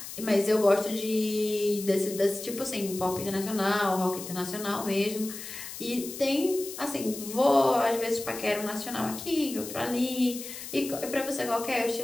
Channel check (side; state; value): left; noise; hiss, 10 dB below the sound